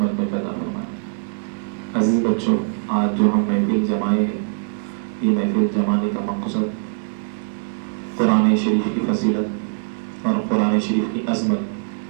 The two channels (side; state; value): left; silent; digital silence